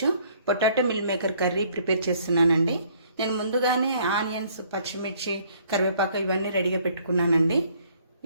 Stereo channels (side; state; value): both; inverted; correlation -0.62